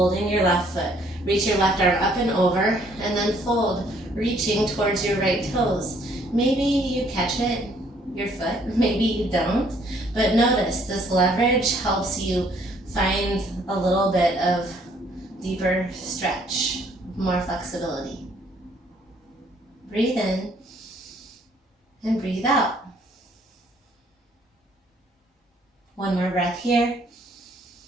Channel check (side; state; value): both; normal; correlation 0.64